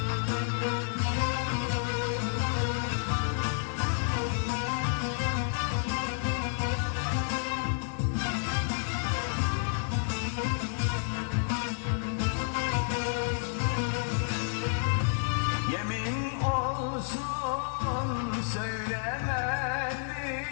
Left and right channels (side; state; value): right; silent; digital silence